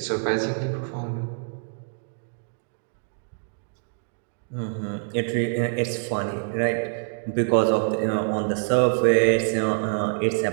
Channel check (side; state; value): left; silent; digital silence